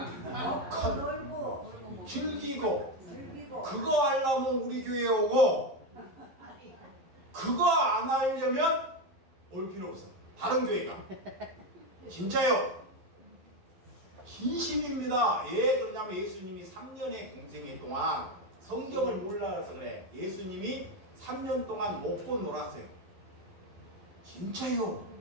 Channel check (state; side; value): late; left; 11 ms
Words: 놀고 즐기고 즐기고 그거 하려면 우리 교회에 오고 그거 안 하려면 올 필요 없어. 다른 교회가. 진짜요. 진심입니다. 왜 그러냐면 예수님이 3년의 공생애 동안 성경을 몰라서 그래. 예수님이 3년 동안 먹고 놀았어요. 진짜요.